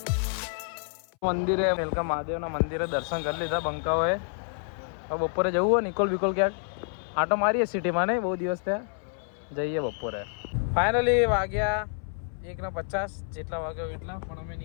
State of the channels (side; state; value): right; silent; 59 dB below the other